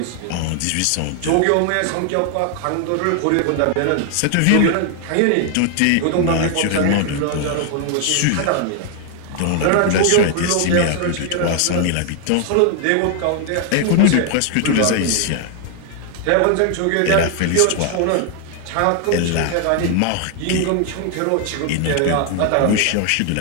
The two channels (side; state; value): both; different; correlation 0.00